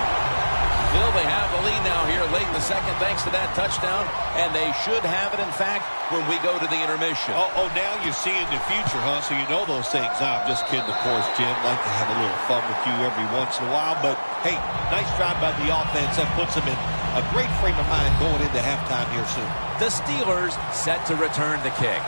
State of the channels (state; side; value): inverted; both; correlation -1.00